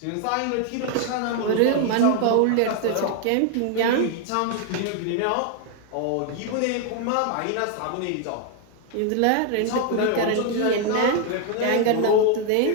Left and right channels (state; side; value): different; both; correlation 0.01